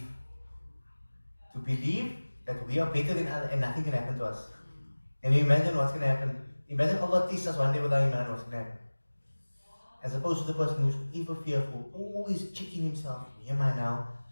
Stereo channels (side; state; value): both; inverted; correlation -1.00